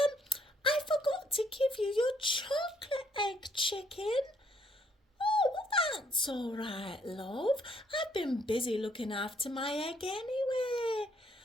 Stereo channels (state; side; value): normal; both; correlation 0.68